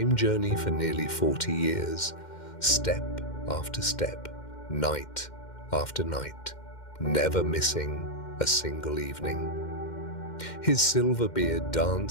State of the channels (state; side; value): late; right; 2.1 ms